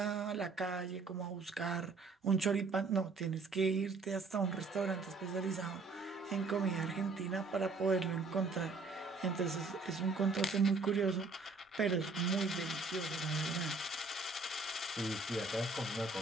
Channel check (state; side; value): quieter; left; 3.9 dB